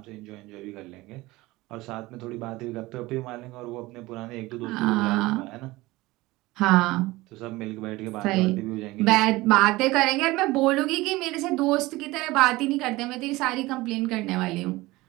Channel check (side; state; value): left; quieter; 20.1 dB